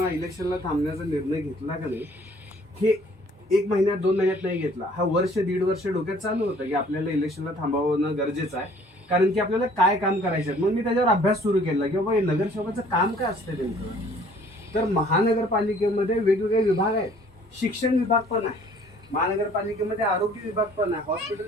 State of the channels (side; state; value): both; normal; correlation 0.56